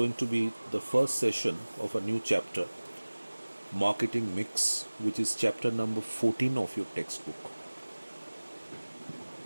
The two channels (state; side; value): inverted; both; correlation -1.00